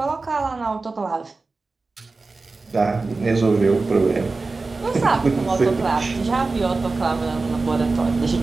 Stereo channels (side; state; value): left; quieter; 3.7 dB